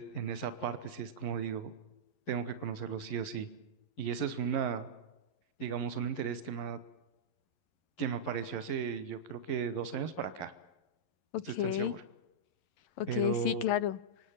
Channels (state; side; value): late; right; 11 ms